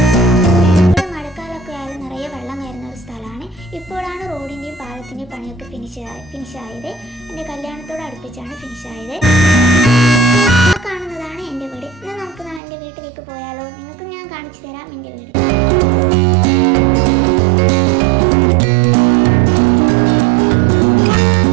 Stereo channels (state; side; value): drops out; left; at 12.6 s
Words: ഇവിടെ മഴക്കാലമൊക്കെ ആയാലും നിറയെ വെള്ളം കയറുന്ന ഒരു സ്ഥലമാണ്. ഇപ്പോഴാണ് റോഡിൻ്റെയും പാലത്തിൻ്റെയും പണിയൊക്കെ ഫിനിഷായത്. എൻ്റെ കല്യാണത്തോട് അടുപ്പിച്ചാണ് ഫിനിഷായത്. ആ കാണുന്നതാണ് എൻ്റെ വീട്. എന്നാൽ നമുക്ക് എൻ്റെ വീട്ടിലേക്ക് പോയാലോ? നിങ്ങൾക്ക് ഞാൻ കാണിച്ചു തരാം എൻ്റെ വീട്.